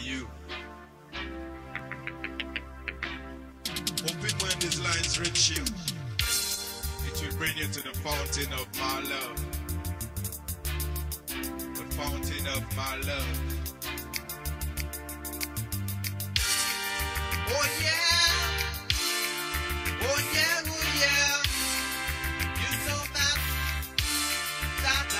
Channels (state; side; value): identical; both; correlation 1.00